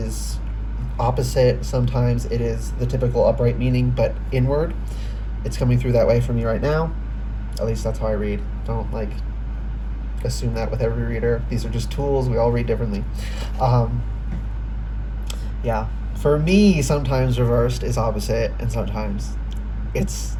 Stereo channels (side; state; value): both; identical; correlation 1.00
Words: opposite. Sometimes it is the typical upright meaning, but inward. It's coming through that way for me right now. At least that's how I read. Don't, like, assume that with every reader. These are just tools. We all read differently. Yeah. For me, sometimes reversed is opposite, and sometimes it's